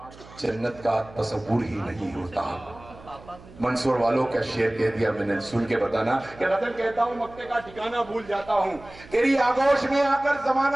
جنت کا تصور ہی نہیں ہوتا۔ منصور والوں کا شعر کہہ دیا میں نے، سن کے بتانا کہ غزل کہتا ہوں مقتے کا ٹھکانہ بھول جاتا ہوں، تیری آغوش میں آ کر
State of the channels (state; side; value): noise; right; hum, 20 dB below the sound